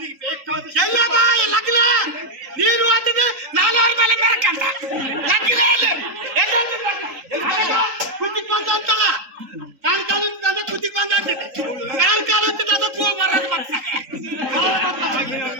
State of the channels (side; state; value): left; late; 3.8 ms